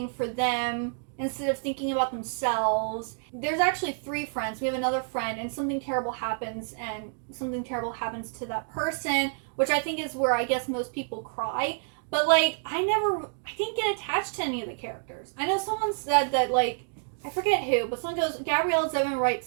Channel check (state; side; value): silent; left; digital silence